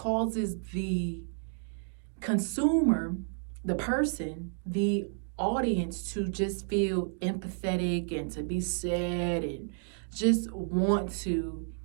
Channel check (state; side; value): silent; left; digital silence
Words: the consumer, the person, the audience to just feel empathetic and to be sad and just want to